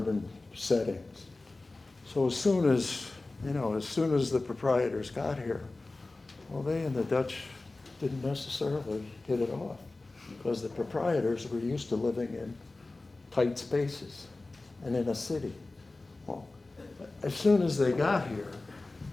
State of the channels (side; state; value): right; quieter; 3.2 dB